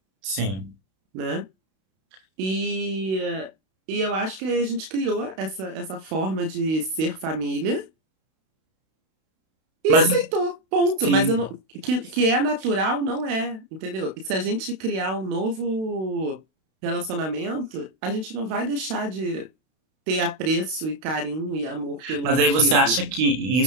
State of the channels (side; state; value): left; late; 32 ms